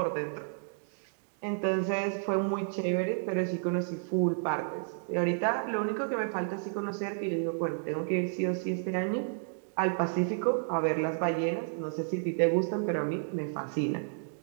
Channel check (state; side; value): silent; left; digital silence